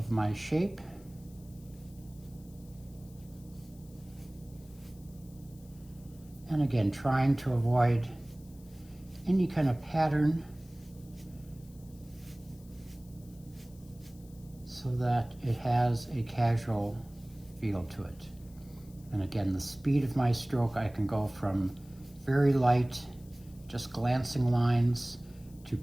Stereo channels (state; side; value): noise; left; hiss, 26 dB below the sound